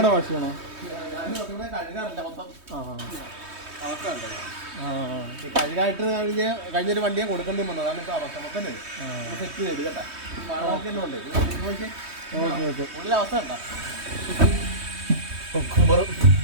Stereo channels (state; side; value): late; left; 3.2 ms